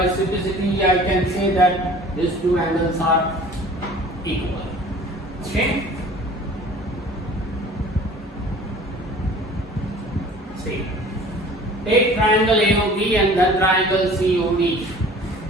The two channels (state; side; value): normal; both; correlation 0.47